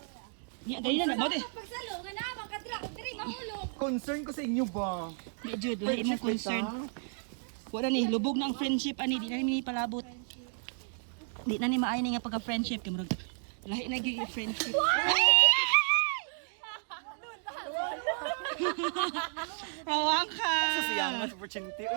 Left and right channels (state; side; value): silent; left; 56 dB below the other